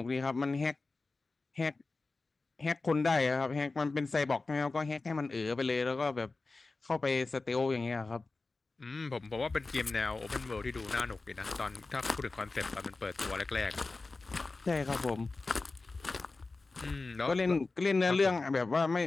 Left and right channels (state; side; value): quieter; right; 3.6 dB